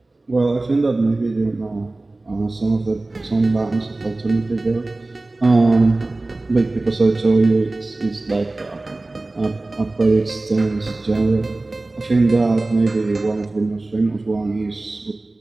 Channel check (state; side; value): quieter; left; 3.0 dB